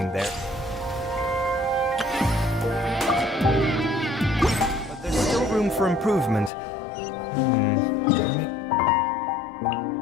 there. But there's still room for improvement.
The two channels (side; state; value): right; drops out; at 6.5 s